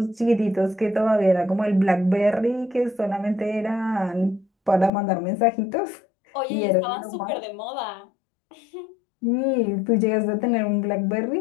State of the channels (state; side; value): drops out; right; at 4.9 s